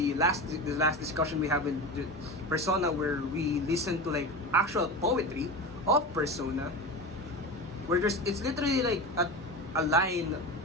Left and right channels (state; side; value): normal; both; correlation 0.25